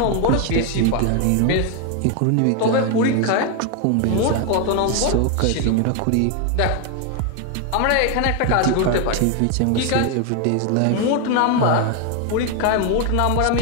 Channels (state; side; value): different; both; correlation 0.01